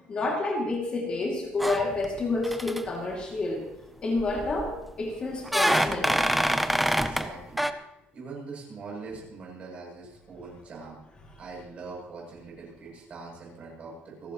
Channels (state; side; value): normal; both; correlation 0.85